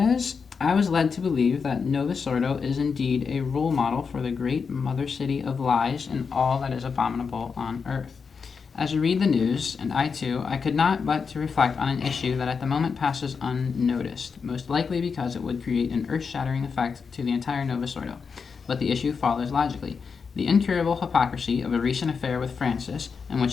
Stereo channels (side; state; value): right; quieter; 5.6 dB